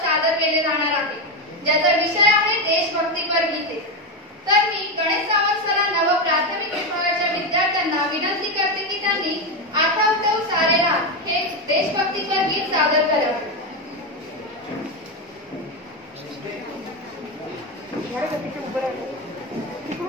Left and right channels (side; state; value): both; normal; correlation 0.11